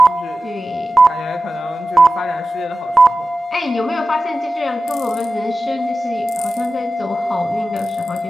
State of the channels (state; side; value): normal; both; correlation 0.94